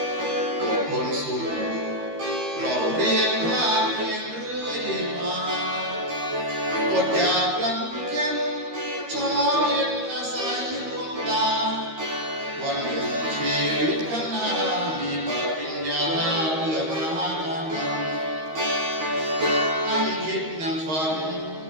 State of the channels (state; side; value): late; left; 13 ms